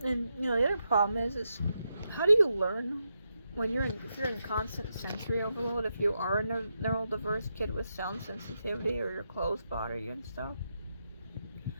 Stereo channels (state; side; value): inverted; both; correlation -0.85